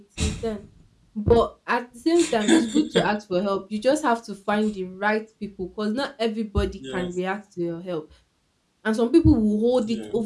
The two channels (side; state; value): both; identical; correlation 1.00